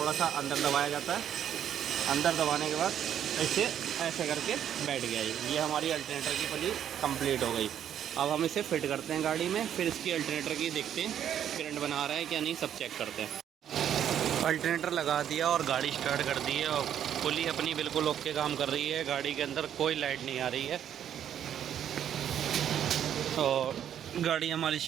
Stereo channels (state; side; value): quieter; left; 9.8 dB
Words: सा अंदर दबाया जाता है, अंदर दबाने के बाद ऐसे ऐसे करके बैठ गया। ये हमारी अल्टरनेटर की पुली कंप्लीट हो गई। अब हम इसे फिट करते हैं गाड़ी में, फिर इसकी अल्टरनेटर की देखते हैं करंट बना रहा है क्या नहीं, सब चेक करते हैं। अल्टरनेटर लगा दिया और गाड़ी स्टार्ट कर दी है, और पुली अपनी बिल्कुल ओके काम कर रही है। गाड़ी के अंदर कोई लाइट नहीं आ रही है, और गाड़ी हमारी